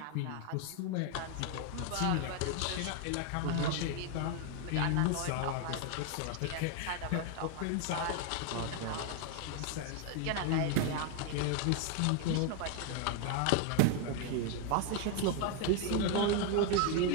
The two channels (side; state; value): both; different; correlation 0.01